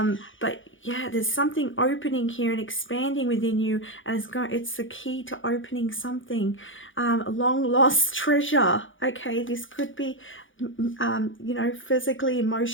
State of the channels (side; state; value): right; late; 0.57 ms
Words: yeah, there's something opening here and expanding within you, and it's the key to opening something. A long lost treasure. Okay, this could be, you know, physically,